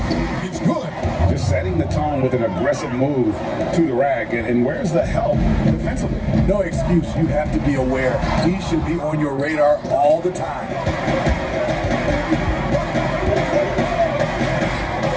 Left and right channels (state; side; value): identical; both; correlation 1.00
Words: It's good. Just setting the tone with an aggressive move to the rack. And where's the help defensively? No excuse. You have to be aware. He should be on your radar all the time.